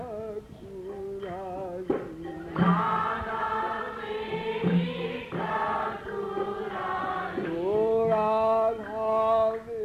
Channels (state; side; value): identical; both; correlation 1.00